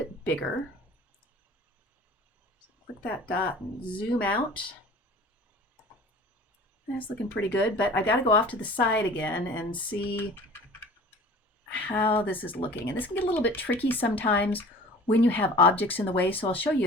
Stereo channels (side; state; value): both; normal; correlation 0.43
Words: bigger. So click that dot and zoom out. That's looking pretty good, but I got to go off to the side again and see how this is looking. And this can get a little bit tricky sometimes when you have objects in the way, so I'll show